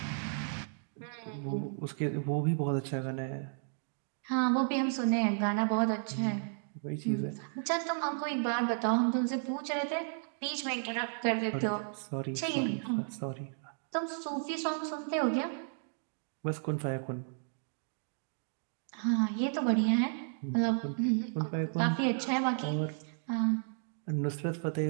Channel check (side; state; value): left; silent; digital silence